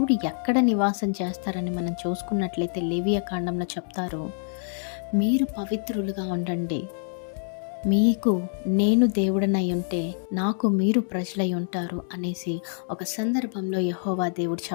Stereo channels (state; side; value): silent; right; 61 dB below the other